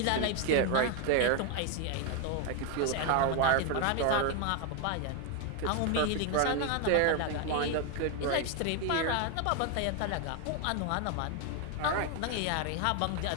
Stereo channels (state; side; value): different; both; correlation 0.01